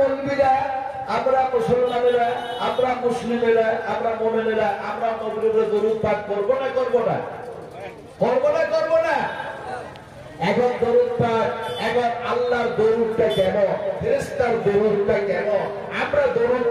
আমরা মুসলমানেরা, আমরা মুসলিমেরা, আমরা মুমিনেরা আমরা নবীর উপরে দরুদ পাঠ করব না করব না? করব না করব না? এখন দরুদ পাঠ, এখন আল্লাহর দরুদটা কেমন, ফেরেশতার দরুদটা কেমন, আমরা দরুদ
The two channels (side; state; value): both; identical; correlation 1.00